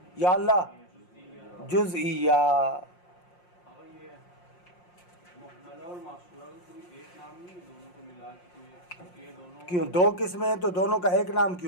یا اللہ جزئیہ۔ کیوں 2 قسمیں ہیں تو دونوں کا ایک نام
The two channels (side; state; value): right; late; 5.6 ms